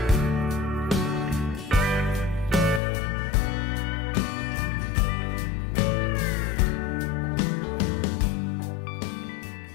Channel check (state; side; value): drops out; right; at 2.8 s